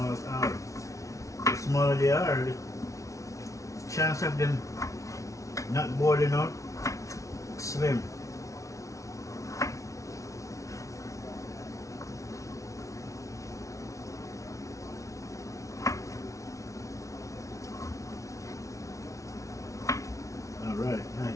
at all. The smaller they are, the chance of them not boiling out slim. Alright,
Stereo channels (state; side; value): late; right; 0.15 ms